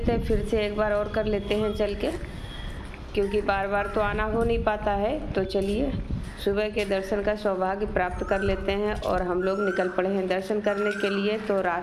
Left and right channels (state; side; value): identical; both; correlation 1.00